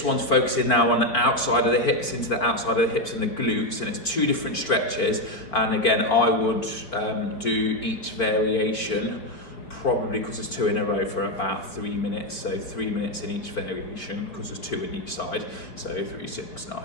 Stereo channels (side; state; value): right; late; 4.5 ms